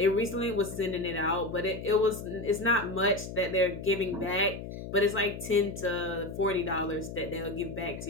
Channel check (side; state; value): left; noise; hum, 9 dB below the sound